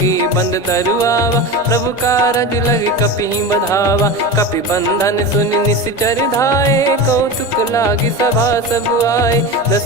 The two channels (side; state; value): both; normal; correlation 0.25